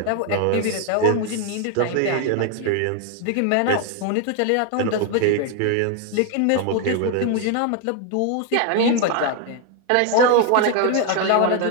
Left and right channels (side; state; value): both; different; correlation 0.01